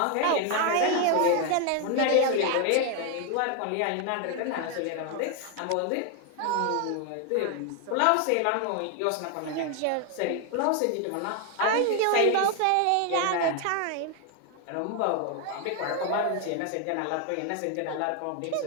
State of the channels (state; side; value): different; both; correlation 0.01